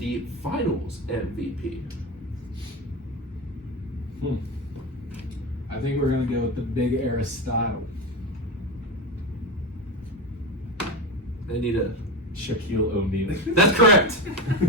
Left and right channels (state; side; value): normal; both; correlation 0.19